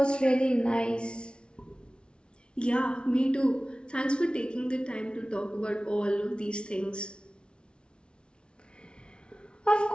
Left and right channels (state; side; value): late; right; 0.057 ms